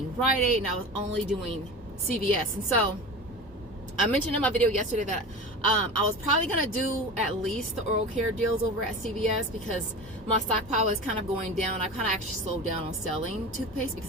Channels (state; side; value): normal; both; correlation 0.31